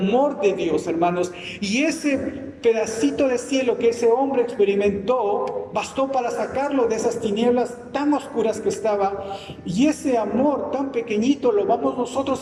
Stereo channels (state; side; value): identical; both; correlation 1.00